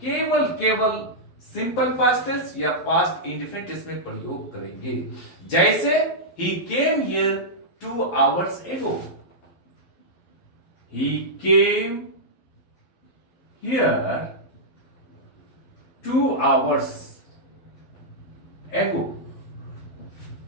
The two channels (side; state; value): right; late; 12 ms